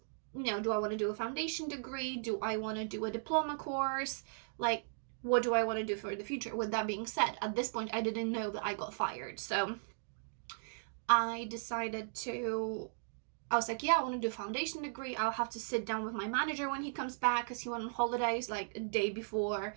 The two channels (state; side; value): silent; left; digital silence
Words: do I want to do a foundation degree? Do I want to do a diploma course? Like, what do I want to do for the future? With that being said, at this point, I didn't know that I got fired. So I was like, yeah, I want to do a foundation degree. I'll have to sit down with my manager when he comes back because he went on holidays like a day before